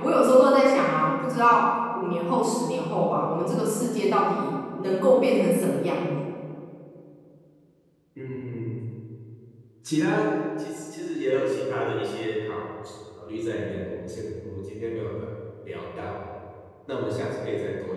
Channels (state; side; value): identical; both; correlation 1.00